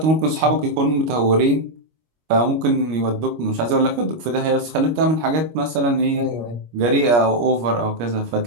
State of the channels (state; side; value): late; left; 25 ms